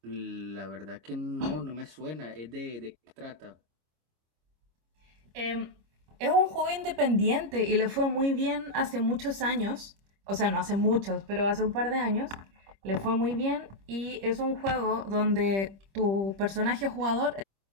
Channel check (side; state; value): left; late; 26 ms